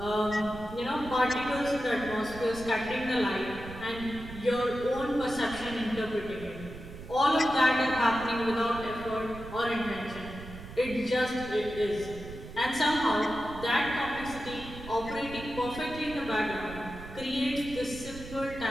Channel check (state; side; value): noise; right; rumble, 13 dB below the sound